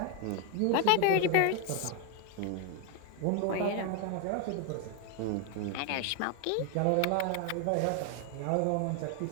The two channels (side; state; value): both; different; correlation 0.01